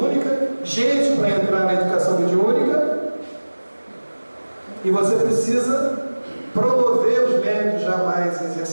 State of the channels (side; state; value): both; inverted; correlation -1.00